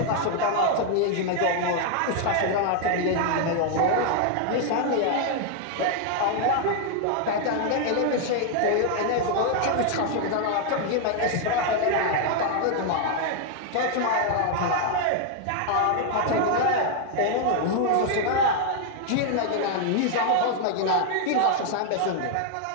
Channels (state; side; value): different; both; correlation 0.00